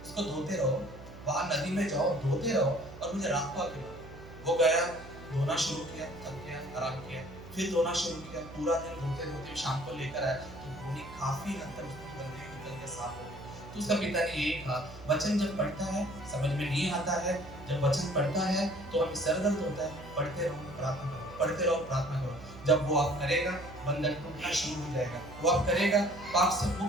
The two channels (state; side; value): noise; right; hum, 16 dB below the sound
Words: उसको धोते रहो, वहां नदी में जाओ, धोते रहो और मुझे रात को आके लाओ। वो गया, धोना शुरू किया, थक गया, आराम किया, फिर धोना शुरू किया। पूरा दिन धोते धोते शाम को लेकर आया तो गोली काफी हद तक उसकी गंदगी निकल के साफ हो गई। तो उसका पिता ने यही कहा, वचन जब पढ़ता है समझ में नहीं आता है, जब वचन पढ़ता है तो हमें सर दर्द होता है, पढ़ते रहो, प्रार्थना करो, पढ़ते रहो, प्रार्थना करो। जब वो आप करेगा, बंधन टूटना शुरू हो जाएगा। वो आप करेगा, पाप से